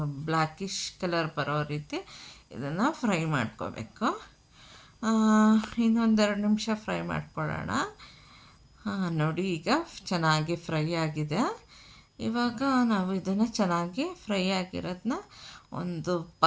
ಬ್ಲ್ಯಾಕಿಶ್ ಕಲರ್ ಬರೋ ರೀತಿ ಇದನ್ನು ಫ್ರೈ ಮಾಡ್ಕೋಬೇಕು. ಇನ್ನೊಂದೆರಡು ನಿಮಿಷ ಫ್ರೈ ಮಾಡ್ಕೊಳ್ಳೋಣ. ನೋಡಿ ಈಗ ಚೆನ್ನಾಗಿ ಫ್ರೈ ಆಗಿದೆ. ಇವಾಗ ನಾವು ಇದನ್ನು ಚೆನ್ನಾಗಿ ಫ್ರೈ ಆಗಿರೋದನ್ನ ಒಂದು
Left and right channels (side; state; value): both; identical; correlation 1.00